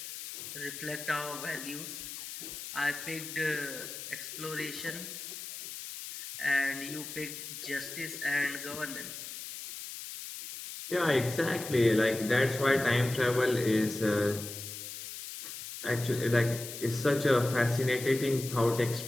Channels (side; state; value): left; noise; hiss, 9 dB below the sound